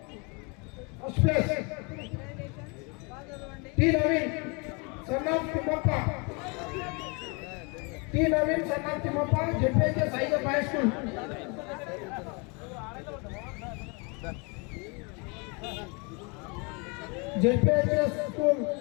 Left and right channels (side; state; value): right; quieter; 31.4 dB